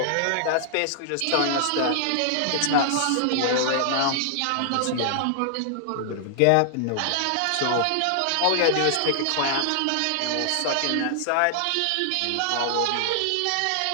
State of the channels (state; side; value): different; both; correlation 0.00